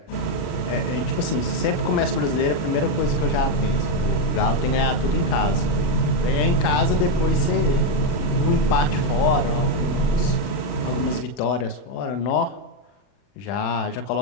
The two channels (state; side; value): late; right; 40 ms